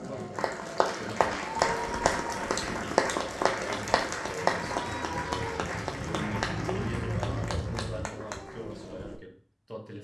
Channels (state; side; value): identical; both; correlation 1.00